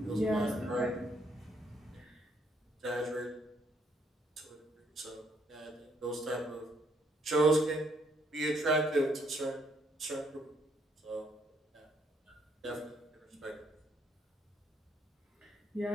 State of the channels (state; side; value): normal; both; correlation 0.70